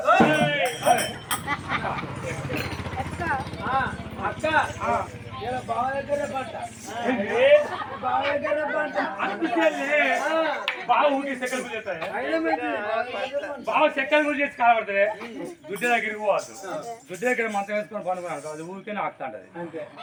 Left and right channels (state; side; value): identical; both; correlation 1.00